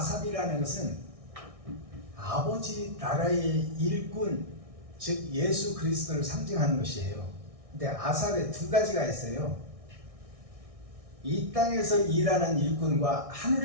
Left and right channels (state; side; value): late; left; 1.6 ms